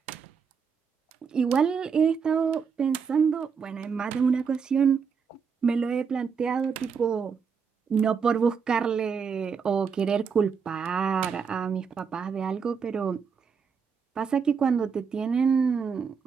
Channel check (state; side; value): quieter; left; 6.1 dB